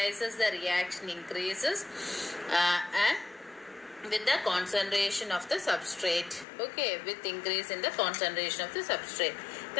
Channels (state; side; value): drops out; right; at 6.5 s